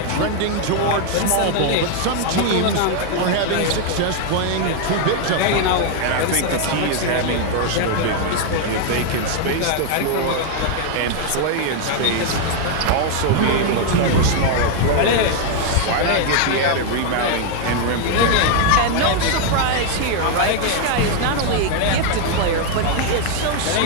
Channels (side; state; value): both; different; correlation 0.00